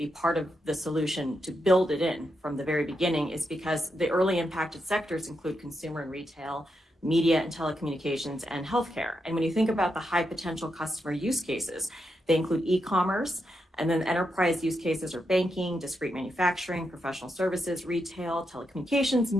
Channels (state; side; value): normal; both; correlation 0.84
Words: part of the solution, to build it in from the very beginning, is because the early impacted sectors include consumer and retail, media and telecommunications, and healthcare. And when you think about the high potential customer use cases, they include e-commerce, and then enterprise use cases are banking, discrete manufacturing, professional services, retail, telecommunications,